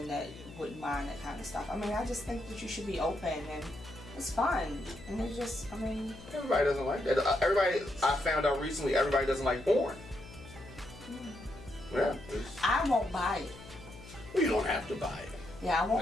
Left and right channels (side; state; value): left; noise; hum, 17 dB below the sound